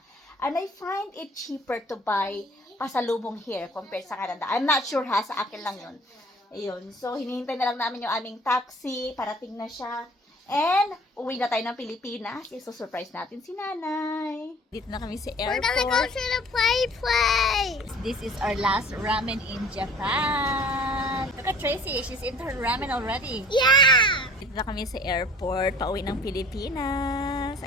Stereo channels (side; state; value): both; normal; correlation 0.50